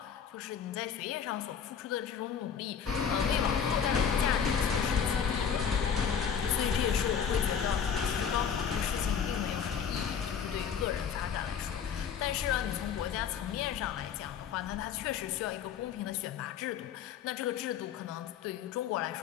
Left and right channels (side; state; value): right; quieter; 7.5 dB